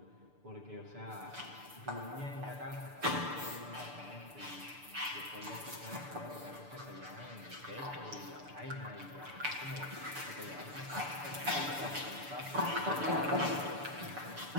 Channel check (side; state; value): left; late; 6.8 ms